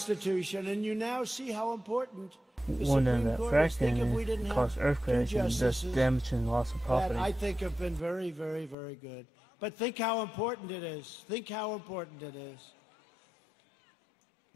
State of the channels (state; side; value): drops out; right; at 8.8 s